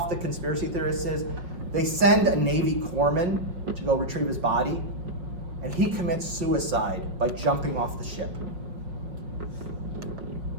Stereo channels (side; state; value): left; late; 5.5 ms